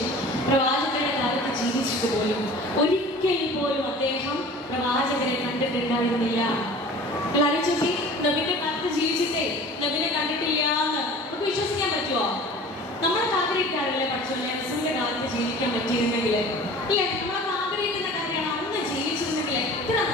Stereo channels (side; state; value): both; normal; correlation 0.42